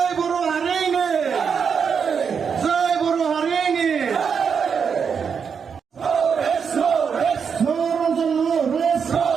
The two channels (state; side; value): quieter; left; 6.5 dB